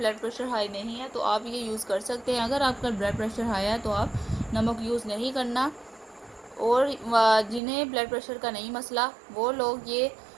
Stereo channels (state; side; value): drops out; left; at 7.6 s